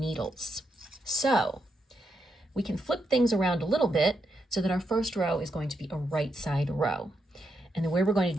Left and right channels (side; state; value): both; normal; correlation 0.82